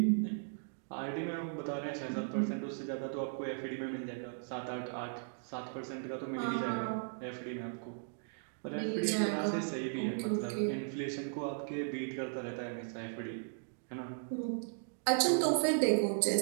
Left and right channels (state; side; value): silent; left; digital silence